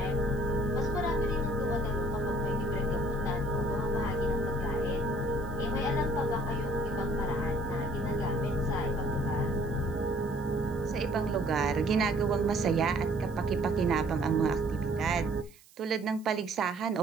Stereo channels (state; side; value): noise; right; hiss, 26 dB below the sound